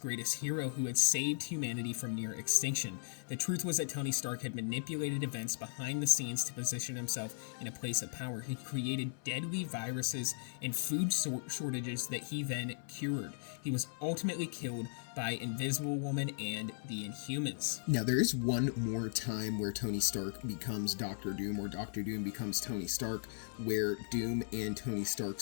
hero who had saved humanity from near extinction. The truth was that Tony Stark had manipulated events behind the scenes to position himself in a place of power. He created deadly viruses and food shortages that he then cured. He was ultimately killed by Invisible Woman and the Inhumans. Now, there is one more time where Tony Stark becomes Doctor Doom, or Doctor Doom becomes Tony Stark, where Doom and Tony Stark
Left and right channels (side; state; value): right; silent; 53 dB below the other